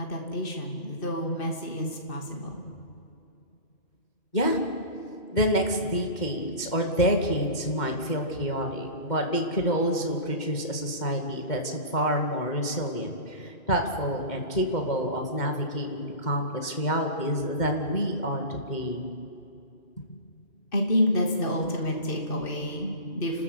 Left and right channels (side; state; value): right; late; 2.1 ms